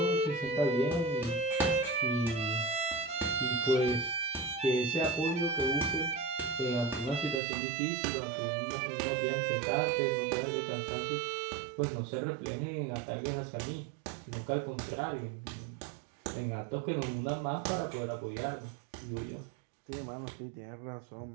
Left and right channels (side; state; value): left; drops out; at 7.4 s